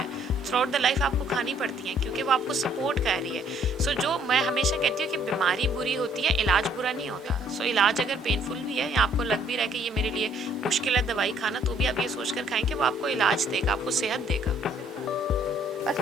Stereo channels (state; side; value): normal; both; correlation 0.63